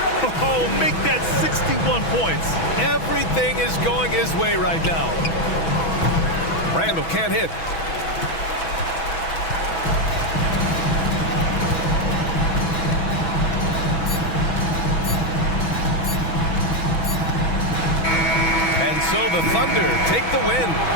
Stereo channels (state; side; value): late; right; 6.1 ms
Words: Oh, make that 61 points. Everything is going his way right now. Randall can't hit. And so the Thunder take the win.